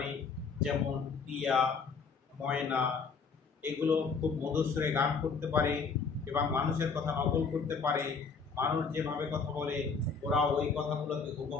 যেমন টিয়া, ময়না। এগুলো খুব মধুর সুরে গান করতে পারে এবং মানুষের কথা নকল করতে পারে। মানুষ যেভাবে কথা বলে ওরা ওই কথাগুলোকে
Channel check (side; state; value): right; quieter; 5.2 dB